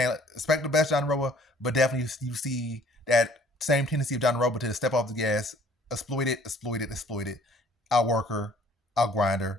expect the best Jandiroba, but definitely you see that same tendency of Jandiroba to step off the gas, exploit it, outwork her, outgrind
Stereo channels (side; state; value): both; normal; correlation 0.57